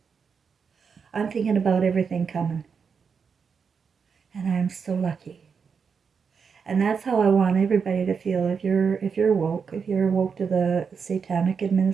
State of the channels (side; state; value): left; quieter; 6.0 dB